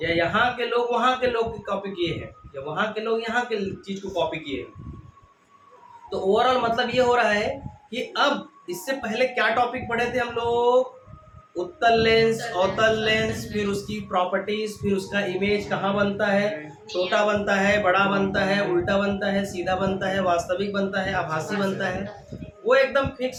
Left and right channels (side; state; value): both; identical; correlation 1.00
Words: या यहाँ के लोग वहाँ के लोग की कॉपी किए हैं, या वहाँ के लोग यहाँ के चीज को कॉपी किए हैं। तो ओवरऑल मतलब ये हो रहा है कि अब इससे पहले क्या टॉपिक पढ़े थे हम लोग, उत्तल लेंस, अवतल लेंस, फिर उसकी प्रॉपर्टीज, फिर उसका इमेज कहाँ बनता है, छोटा बनता है, बड़ा बनता है, उल्टा बनता है, सीधा बनता है, वास्तविक बनता है, आभासी बनता है। वो एकदम